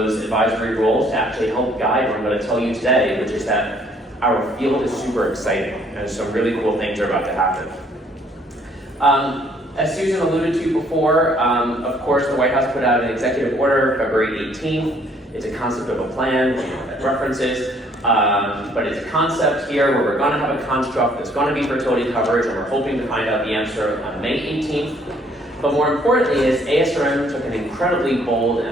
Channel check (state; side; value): normal; both; correlation 0.63